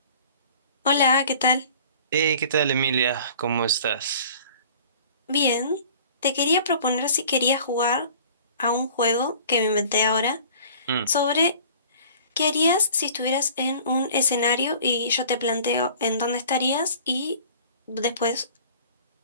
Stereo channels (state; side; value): inverted; both; correlation -0.47